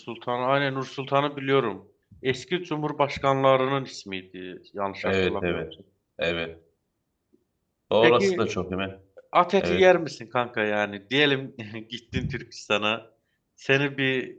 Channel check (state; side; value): identical; both; correlation 1.00